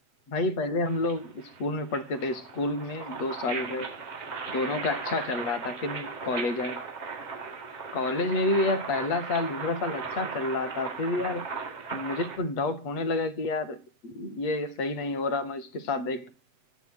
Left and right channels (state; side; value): late; right; 7.9 ms